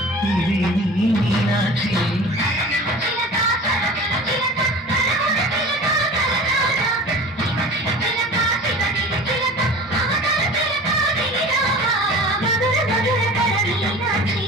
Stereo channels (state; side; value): normal; both; correlation 0.39